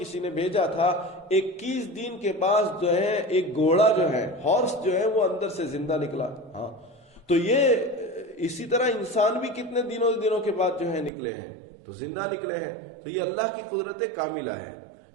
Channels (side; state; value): left; drops out; at 11.1 s